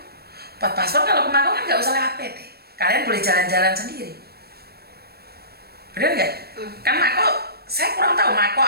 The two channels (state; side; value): late; left; 0.46 ms